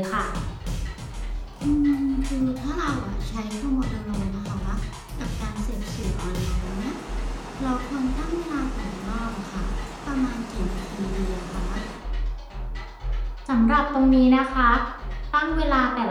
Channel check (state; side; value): identical; both; correlation 1.00